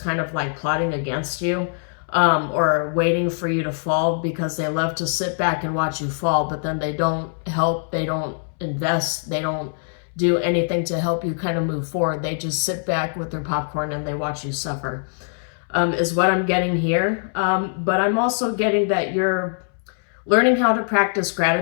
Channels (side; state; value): right; silent; 64 dB below the other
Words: kind of like plotting against you, or waiting for you to fall because they love to sit back and watch you fall, but then they don't help, they don't invest, they don't do anything to help you kind of move forward. They just sit back with their popcorn and they watch you suffer, is what I'm getting here. But I'm also getting that you're learning how to practice